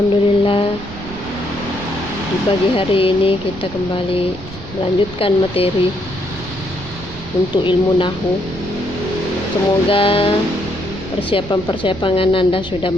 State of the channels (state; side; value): noise; right; rumble, 14 dB below the sound